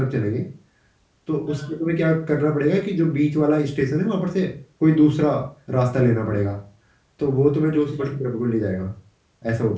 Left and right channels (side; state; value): both; identical; correlation 1.00